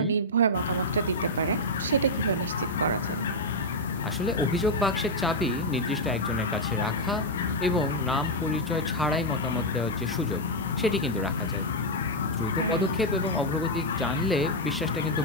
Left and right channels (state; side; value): normal; both; correlation 0.00